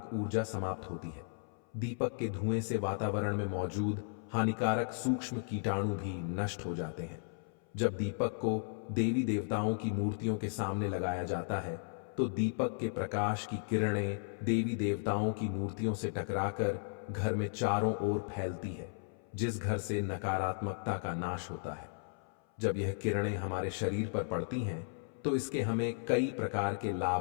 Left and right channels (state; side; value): silent; right; 54 dB below the other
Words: ऊर्जा समाप्त होती है। दीपक के धुएं से वातावरण में मौजूद हानिकारक सूक्ष्म कीटाणु भी नष्ट हो जाते हैं। जब दीपक को देवी देवताओं की मूर्तियों के सामने लगाया जाता है तो दीपक के प्रकाश की किरणें देवी देवताओं की मूर्तियों से टकराकर घर में चारों ओर फैलती है, जिस घर से नकारात्मकता का नाश होता है। जब यह किरणें हमारे शरीर पर पड़ती हैं तो इसके हमें कई प्रकार के